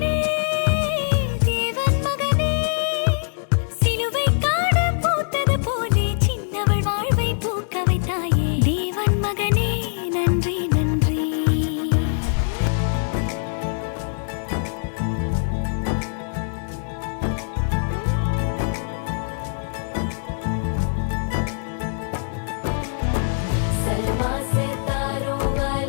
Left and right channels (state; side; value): silent; right; 64 dB below the other